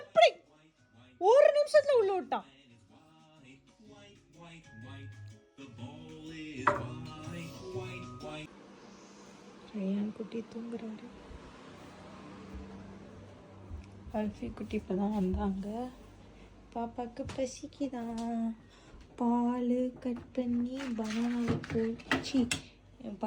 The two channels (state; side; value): identical; both; correlation 1.00